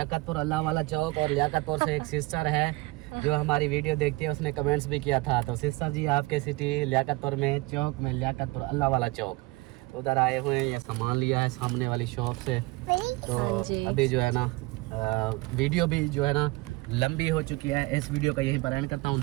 अल्लाह वाला चौक। और लियाकतपुर से एक सिस्टर है जो हमारी वीडियो देखती है, उसने कमेंट्स भी किया था। तो सिस्टर जी आपके सिटी लियाकतपुर में चौक में लियाकतपुर अल्लाह वाला चौक उधर आए हुए हैं। ये सामान लिया है सामने वाली शॉप से। तो अभी जो है ना वीडियो भी जो है ना लंबी हो चुकी है। इस वीडियो का यहीं पर एंड करता हूँ।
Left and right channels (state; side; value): quieter; left; 22.7 dB